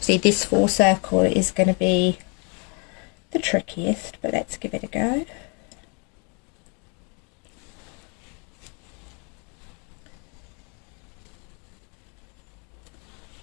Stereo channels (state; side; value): quieter; right; 34.9 dB